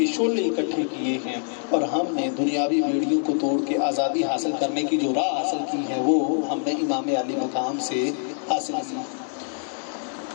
شعلے اکٹھے کیے ہیں، اور ہم نے دنیاوی بیڑیوں کو توڑ کے آزادی حاصل کرنے کی جو راہ حاصل کی ہے وہ ہم نے امام علی مقام سے حاصل کی۔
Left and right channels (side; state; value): right; silent; 62 dB below the other